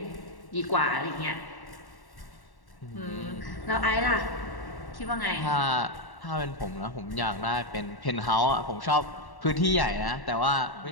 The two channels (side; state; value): right; late; 1.1 ms